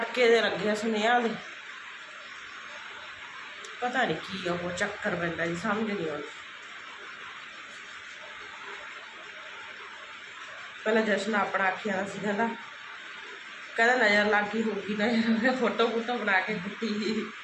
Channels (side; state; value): both; identical; correlation 1.00